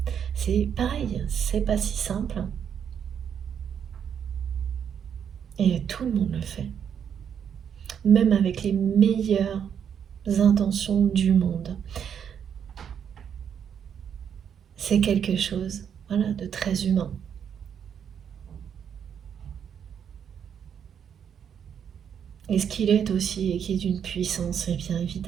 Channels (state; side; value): quieter; left; 8.1 dB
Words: c'est pareil, c'est pas si simple. Et tout le monde le fait. Même avec les meilleures intentions du monde. C'est quelque chose, voilà, de très humain. Et ce qu'il est aussi, et qui est d'une puissance, et bien